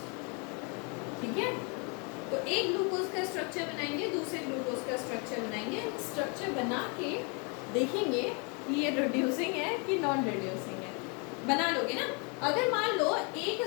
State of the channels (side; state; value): right; quieter; 33.9 dB